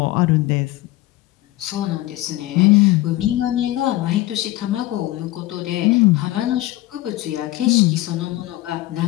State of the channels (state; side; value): quieter; right; 17.0 dB